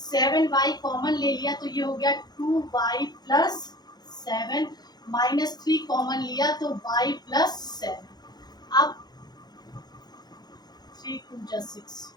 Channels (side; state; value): right; late; 0.20 ms